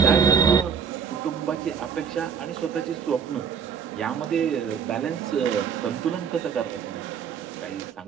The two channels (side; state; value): left; quieter; 7.1 dB